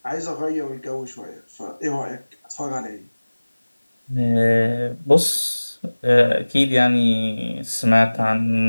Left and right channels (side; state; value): both; inverted; correlation -1.00